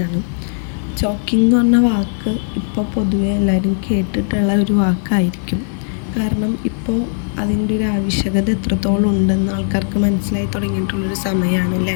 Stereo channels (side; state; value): right; silent; 62 dB below the other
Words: ചോക്കിംഗ് എന്ന് പറഞ്ഞ വാക്ക് ഇപ്പോൾ പൊതുവെ എല്ലാവരും കേട്ടിട്ടുള്ള ഒരു വാക്കായിരിക്കും. കാരണം ഇപ്പോൾ അതിൻ്റെ ഒരു ആവശ്യകത എത്രത്തോളം ഉണ്ടെന്ന് ആൾക്കാർക്ക് മനസ്സിലായി തുടങ്ങിയിട്ടുള്ളൊരു സമയമാണല്ലേ.